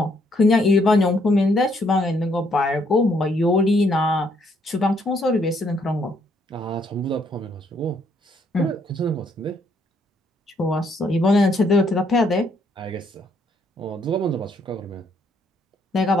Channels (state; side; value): normal; both; correlation 0.70